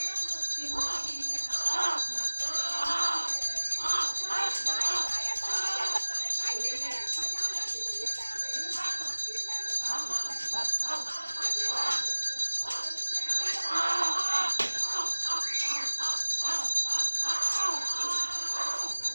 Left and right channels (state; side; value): inverted; both; correlation -1.00